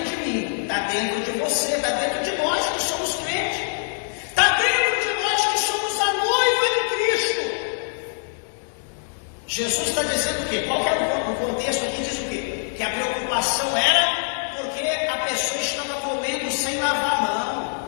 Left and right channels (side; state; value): right; silent; 63 dB below the other